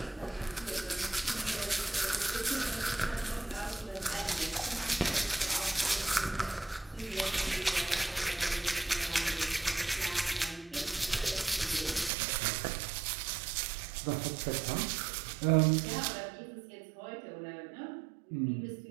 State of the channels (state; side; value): drops out; left; at 12.1 s